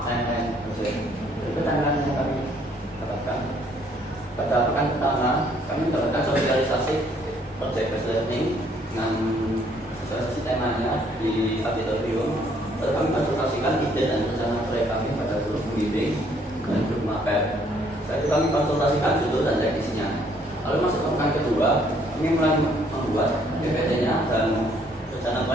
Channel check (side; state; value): both; normal; correlation 0.65